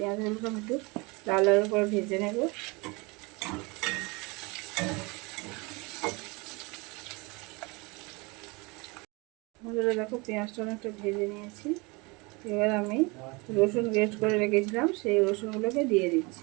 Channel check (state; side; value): quieter; left; 26.9 dB